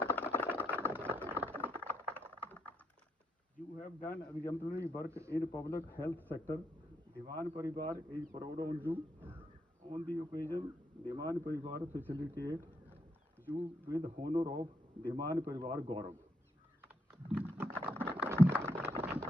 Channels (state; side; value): normal; both; correlation 0.79